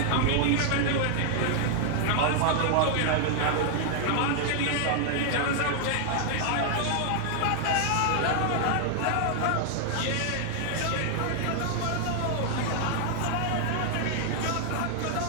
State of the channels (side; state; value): both; different; correlation 0.00